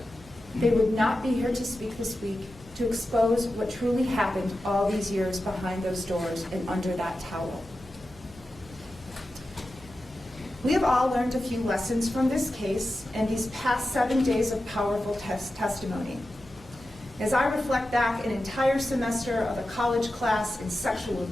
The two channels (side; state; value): right; noise; hum, 23 dB below the sound